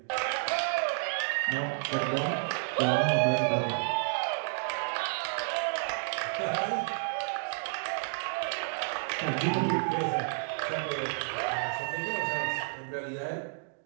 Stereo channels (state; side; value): silent; left; digital silence